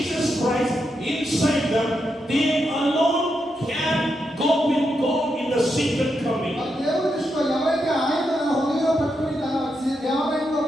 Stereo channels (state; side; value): normal; both; correlation 0.84